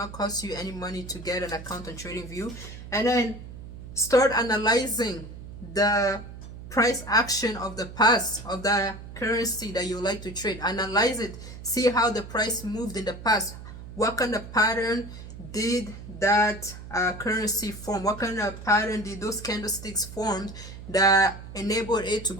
cost you any money to get an account on TradingView. And then start analyzing the price action of the past of the currency that you like to trade. Analyze it. See how the price moved in the past. What kind of pattern did that currency form? What kind of pattern did those candlesticks form that enabled it to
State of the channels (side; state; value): right; noise; hum, 13 dB below the sound